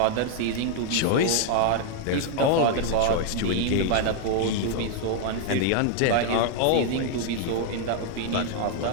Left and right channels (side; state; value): both; different; correlation 0.00